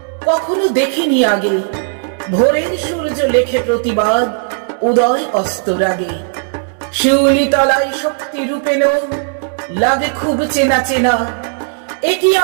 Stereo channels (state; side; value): silent; left; digital silence